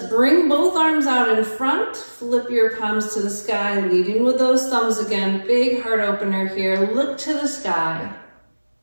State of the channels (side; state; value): both; inverted; correlation -1.00